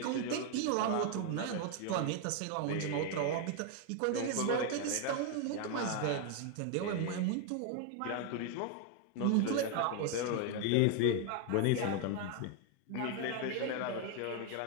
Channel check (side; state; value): both; different; correlation 0.01